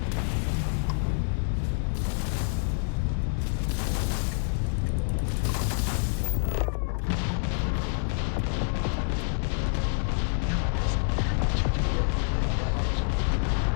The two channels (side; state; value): right; silent; digital silence